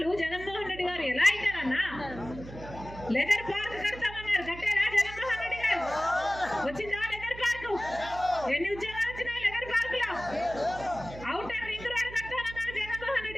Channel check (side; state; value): right; noise; hum, 14 dB below the sound